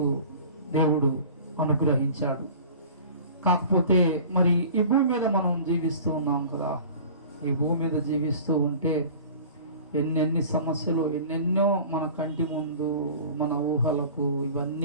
దేవుడు అనుగ్రహించాడు. కాకపోతే మరి ఈ భూమి మీద మనం జీవిస్తూ ఉన్నాం కదా. ఈ భూమి మీద జీవిస్తూ ఉంటే ఎన్నెన్ని సమస్యలు, ఎన్నెన్నో మన కంటి ముందు, మన ఊహలకు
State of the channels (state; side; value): inverted; both; correlation -0.42